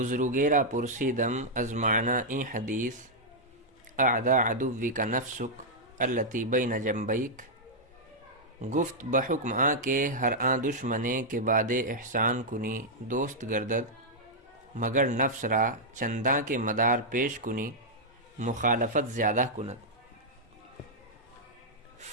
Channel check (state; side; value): normal; both; correlation -0.06